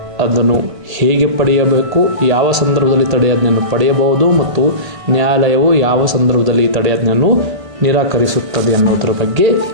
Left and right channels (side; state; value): left; late; 1.8 ms